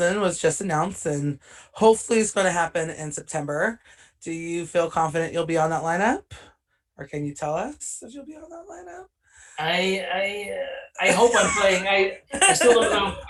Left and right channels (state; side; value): identical; both; correlation 1.00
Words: was just announced, and hopefully it's going to happen in September. Do you feel confident you'll be on that lineup, or can you tell us if you'll be on that lineup? I hope I'm playing. I still don't